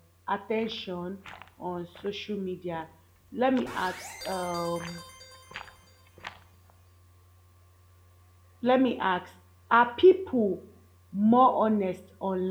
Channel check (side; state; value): both; identical; correlation 1.00